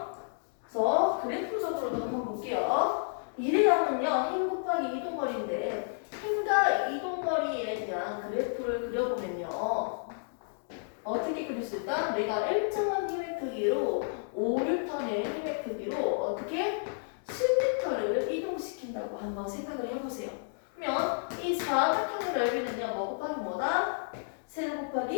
그래서 그래프적으로도 한번 볼게요. 1의 양은요. 힘 곱하기 이동거리인데 힘과 이동거리에 대한 그래프를 그려보면요. 어떻게 그릴 수 있다? 내가 일정한 힘의 크기로 5N의 힘의 크기로 어떻게 10m를 이동시킨다고 한번 생각을 해보세요. 그러면 이 사각형의 넓이는요. 뭐 곱하기 뭐다? 세로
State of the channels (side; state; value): right; silent; digital silence